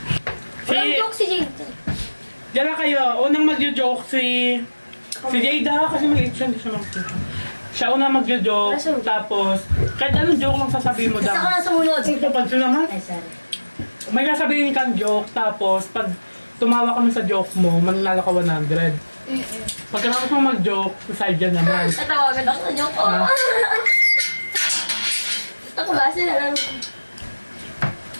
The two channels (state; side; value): inverted; both; correlation -1.00